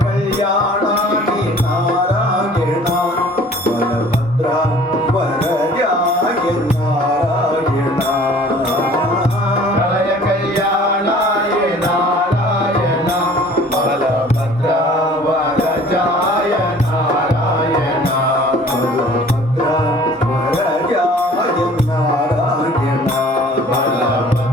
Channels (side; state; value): both; normal; correlation 0.50